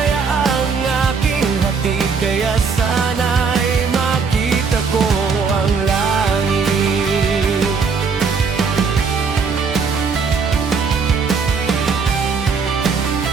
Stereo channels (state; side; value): quieter; left; 5.3 dB